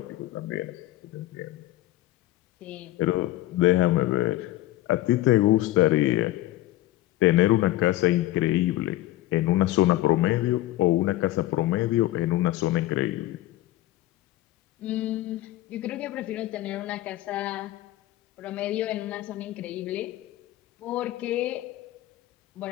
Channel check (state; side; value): quieter; right; 15.9 dB